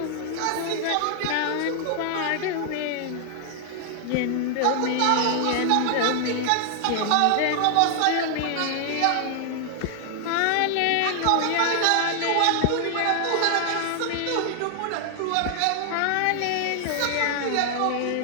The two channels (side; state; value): both; different; correlation 0.00